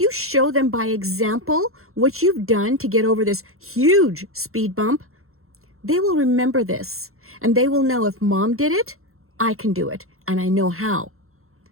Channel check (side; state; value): left; late; 0.62 ms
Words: show them by example what you've done to get over this huge speed bump, they will remember this. And they will know, if mom did it, I can do it. And I know how.